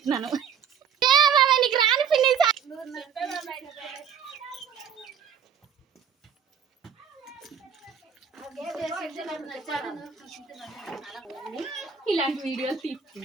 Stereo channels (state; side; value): quieter; left; 7.3 dB